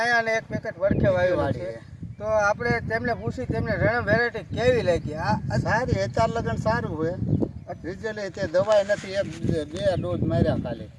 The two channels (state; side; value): identical; both; correlation 1.00